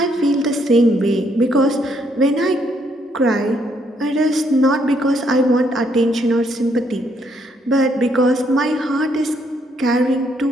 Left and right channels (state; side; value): normal; both; correlation 0.72